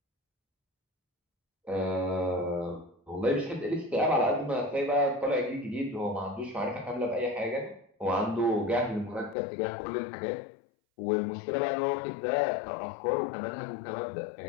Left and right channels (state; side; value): drops out; right; at 9.3 s